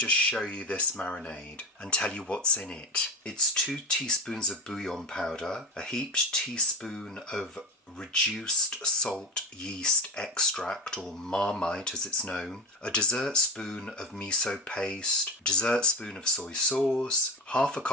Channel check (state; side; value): normal; both; correlation 0.23